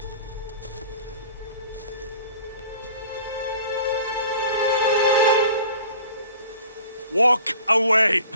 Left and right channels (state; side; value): inverted; both; correlation -0.46